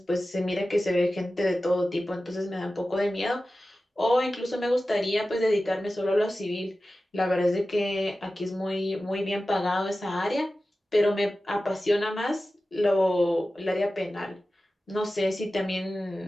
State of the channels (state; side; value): normal; both; correlation 0.95